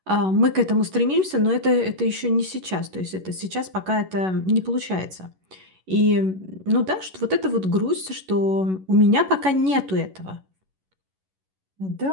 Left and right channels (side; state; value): left; late; 11 ms